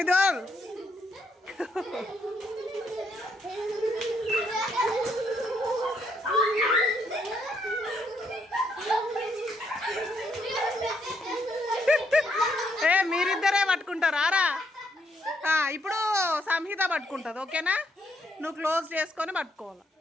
మీరిద్దరే పట్టుకుంటారా? ఇప్పుడు సంహిత పట్టుకుంటుంది. ఓకేనా? నువ్వు క్లోజ్ చేసుకొని పట్టుకోవాలి.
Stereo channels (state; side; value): normal; both; correlation 0.74